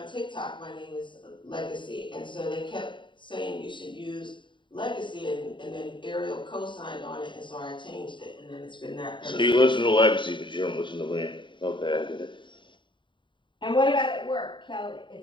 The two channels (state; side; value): late; right; 0.23 ms